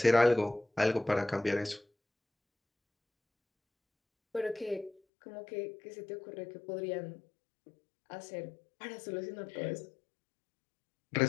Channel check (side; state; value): right; drops out; at 5.0 s